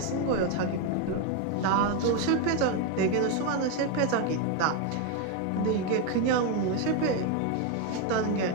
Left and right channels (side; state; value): both; different; correlation 0.02